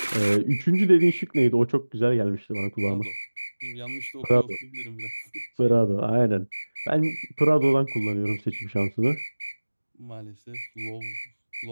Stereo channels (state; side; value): inverted; both; correlation -1.00